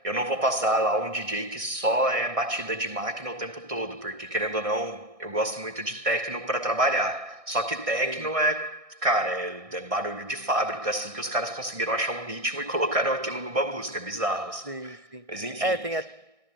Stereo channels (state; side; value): late; left; 1.6 ms